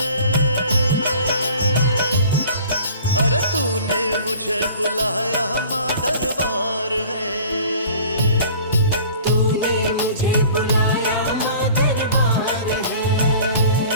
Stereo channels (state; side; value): inverted; both; correlation -0.47